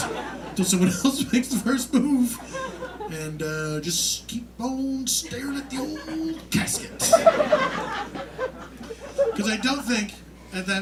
until someone else makes the first move, and just keep on staring at the old casket. Because I don't think at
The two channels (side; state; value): both; identical; correlation 1.00